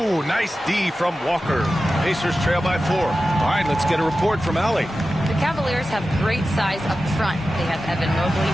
nice D from Walker. Pacers trail by 4. All right, let's get a report from Allie. The Cavaliers have great size up front. They have Evan Mobley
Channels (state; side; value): normal; both; correlation 0.93